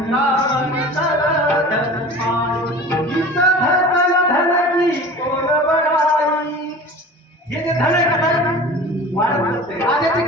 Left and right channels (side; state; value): both; normal; correlation 0.38